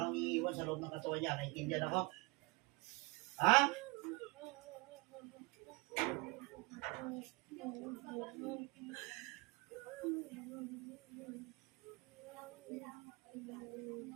kang iiwan sa loob ng katawan niya. Naintindihan ako? Ha?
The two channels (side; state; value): left; quieter; 25.3 dB